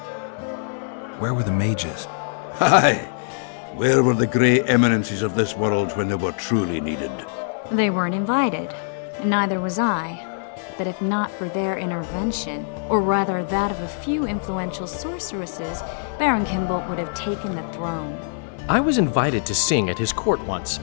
Where were the mages? Aye. Where were the grey eminences of this world when they were truly needed? They weren't invited, and neither was I. But if not for their intervention, or rather that of a few influential sorceresses, Baron Kimbolt would have taken the throne. I was invited to sing at his court once.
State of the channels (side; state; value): right; silent; digital silence